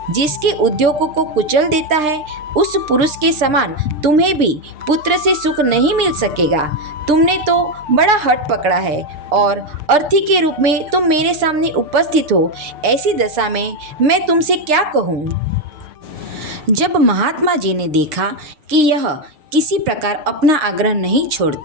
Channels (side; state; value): left; late; 6.6 ms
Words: जिसके उद्योगों को कुचल देता है, उस पुरुष के समान तुम्हें भी पुत्र से सुख नहीं मिल सकेगा। तुमने तो बड़ा हठ पकड़ा है और अर्थी के रूप में तुम मेरे सामने उपस्थित हो। ऐसी दशा में मैं तुमसे क्या कहूँ? जब महात्मा जी ने देखा कि यह किसी प्रकार अपना आग्रह नहीं